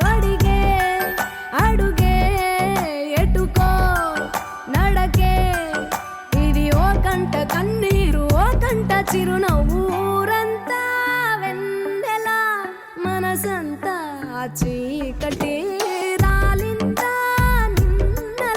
అడుగే ఎటుకో నడకే కంట కన్నీరు ఓ కంట చిరునవ్వు ఊరంతా వెన్నెల మనసంతా చీకటి రాలిందా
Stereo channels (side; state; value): both; identical; correlation 1.00